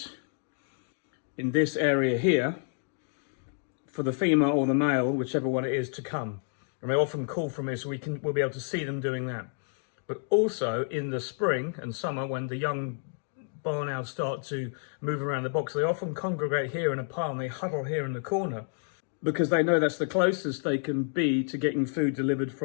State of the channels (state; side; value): silent; right; 58 dB below the other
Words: in this area here for the female or the male, whichever one it is, to come. And they often call from here, so we'll be able to see them doing that. But also in the spring and summer, when the young barn owls start to move around the box, they often congregate here in a pile and they huddle here in the corner, because they know that's the closest they can be to getting food delivered